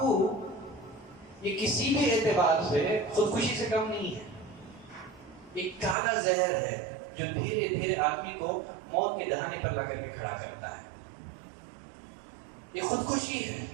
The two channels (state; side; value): drops out; left; at 6.0 s